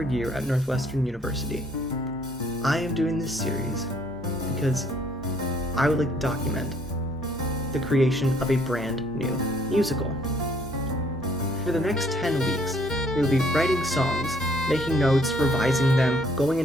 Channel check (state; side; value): normal; both; correlation 0.64